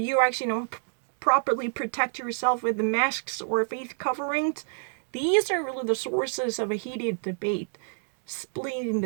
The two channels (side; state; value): left; silent; digital silence